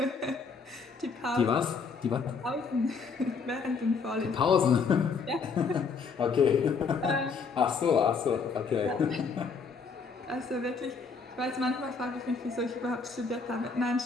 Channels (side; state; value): right; quieter; 5.1 dB